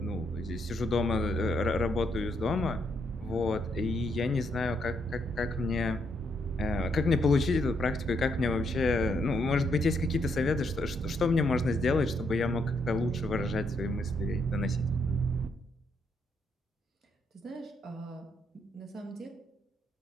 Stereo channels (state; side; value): normal; both; correlation 0.76